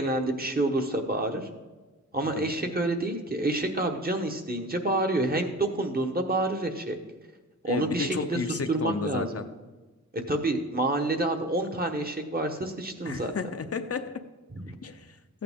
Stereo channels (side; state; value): both; normal; correlation 0.36